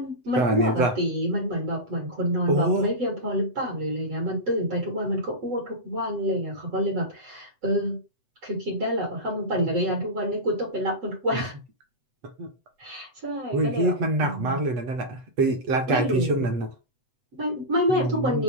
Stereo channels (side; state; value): left; late; 8.0 ms